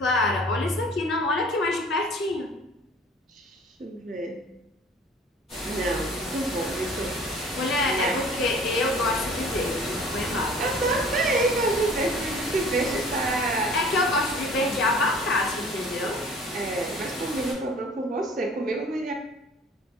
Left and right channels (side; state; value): both; normal; correlation 0.48